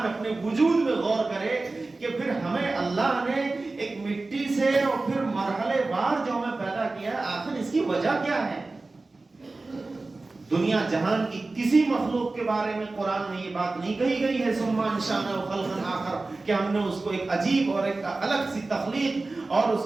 اپنے وجود میں غور کرے کہ پھر ہمیں اللہ نے ایک مٹی سے اور پھر مرحلے وار جو ہمیں پیدا کیا، آخر اس کی وجہ کیا ہے؟ دنیا جہان کی کسی مخلوق کے بارے میں قرآن میں یہ بات نہیں کہی گئی ہے ثم انشأناہ خلقا آخر، کہ ہم نے اس کو ایک عجیب اور ایک الگ سی تخلیق اور اس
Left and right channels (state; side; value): quieter; left; 3.4 dB